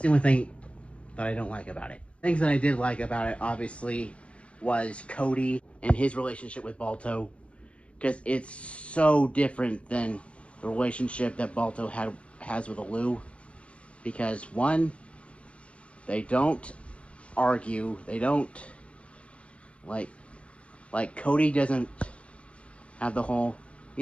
only thing that I don't like about it. Things that I did like about it, obviously, was Cody and his relationship with Balto, because it's so different than the relationship that Balto has with Alou. Because one, they don't argue, they don't like Cody doesn't have the whole,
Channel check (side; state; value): right; late; 0.061 ms